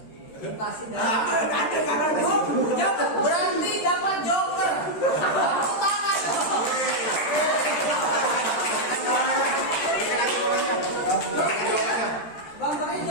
Inflasi berarti dapat joker. Tepuk tangan dong. Bang Bang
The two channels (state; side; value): late; right; 13 ms